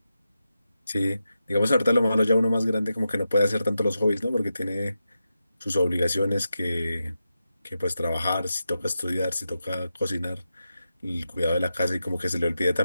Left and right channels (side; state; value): both; inverted; correlation -0.89